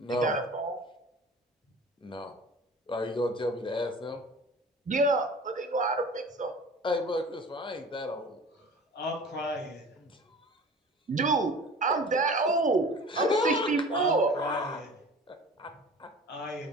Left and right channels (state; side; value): normal; both; correlation 0.41